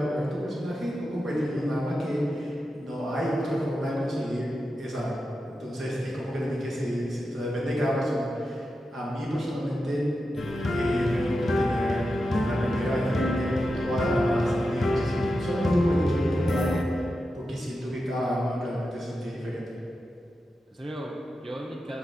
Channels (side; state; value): both; normal; correlation 0.90